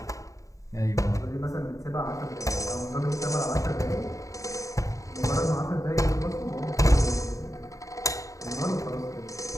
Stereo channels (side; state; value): right; late; 0.16 ms